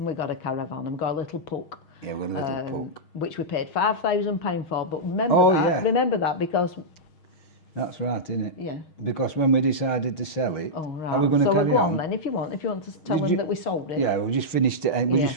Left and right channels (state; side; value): late; right; 6.4 ms